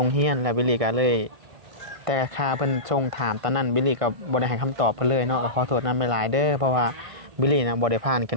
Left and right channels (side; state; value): left; late; 1.5 ms